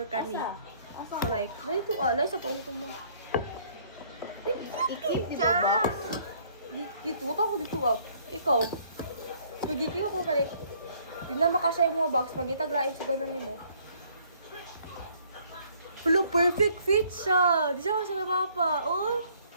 ka ni. So, like, lai sa tuong mo. I-keep dito ba? Dito, buta ko dito up. Ikaw. Nagiging ako kalik. Di na makasya yung mga box. Magitaglain sa ganan ni mo. Hello, perfect fit siya. Di siya kasi mapapa. Oh.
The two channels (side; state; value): both; inverted; correlation -0.62